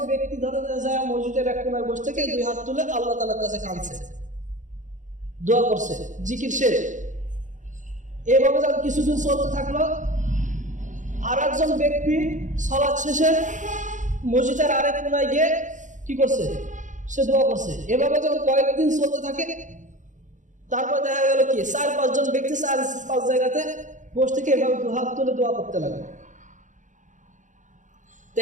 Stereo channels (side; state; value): left; late; 0.36 ms